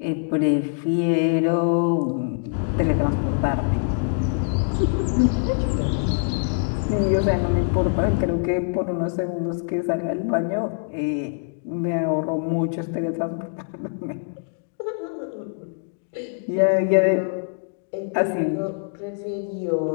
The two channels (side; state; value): right; silent; digital silence